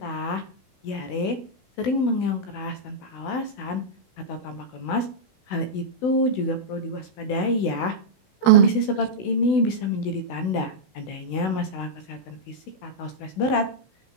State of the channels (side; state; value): right; late; 16 ms